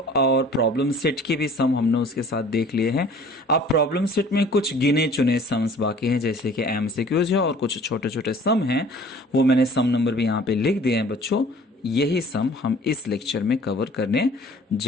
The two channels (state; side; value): normal; both; correlation 0.50